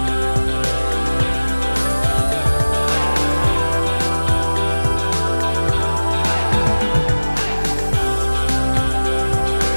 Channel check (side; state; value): both; inverted; correlation -1.00